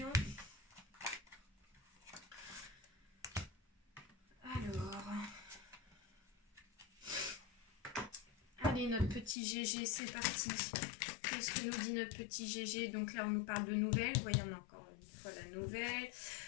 Alors... Allez, notre petit GG, c'est parti. Qu'est-ce que nous dit notre petit GG? Donc là, on nous parle de nouvelles. Vous voyez, on a encore une fois la nouvelle.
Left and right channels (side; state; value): right; drops out; at 9.3 s